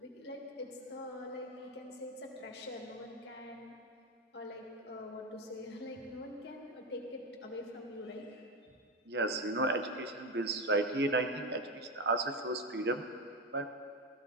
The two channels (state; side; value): normal; both; correlation 0.15